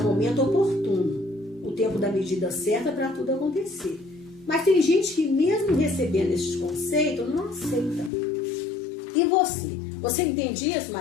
momento oportuno, o tempo da medida certa para tudo acontecer. Mas tem gente que mesmo recebendo esses conceitos não aceita. E você? Você entende isso,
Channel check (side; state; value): right; drops out; at 8.1 s